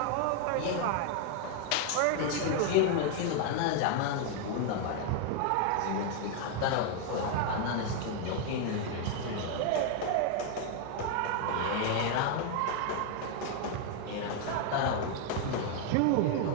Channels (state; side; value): different; both; correlation 0.01